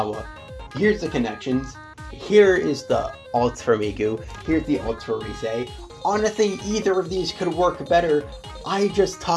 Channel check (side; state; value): both; identical; correlation 1.00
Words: Here's the connections. Here is the ults for Miku. Here's the ults for Ruse. Honestly, either of these could work better. I just